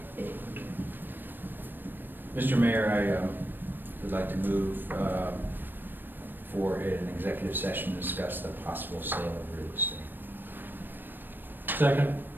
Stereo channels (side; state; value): left; late; 0.094 ms